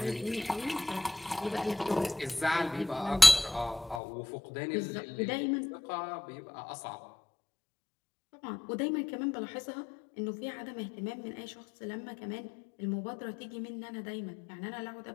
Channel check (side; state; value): right; drops out; at 4.0 s